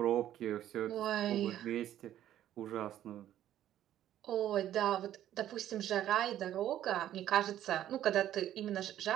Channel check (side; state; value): left; quieter; 11.9 dB